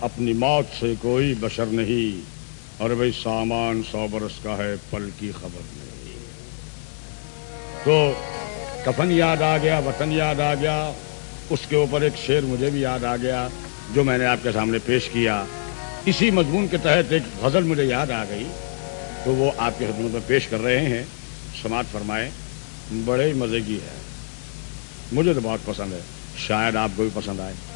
اپنی موت سے کوئی بشر نہیں، اور بھائی سامان 100 برس کا ہے، پل کی خبر نہیں۔ تو کفن یاد آ گیا، وطن یاد آ گیا، اس کے اوپر ایک شعر مجھے بھی یاد آ گیا جو میں نے آپ کے سامنے پیش کیا۔ اسی مضمون کے تحت ایک غزل مجھے یاد آ گئی، تو وہ آپ کے خدمت میں پیش کر رہے ہیں، سماعت فرمائیں۔ بڑے ہی مزے کی ہے، مجھے تو بہت پسند ہے، شاید آپ کو بھی پسند آئے۔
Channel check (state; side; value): silent; right; digital silence